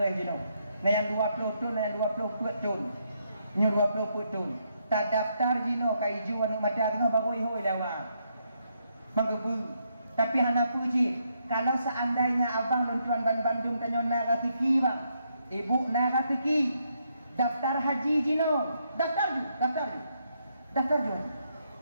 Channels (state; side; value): inverted; both; correlation -0.76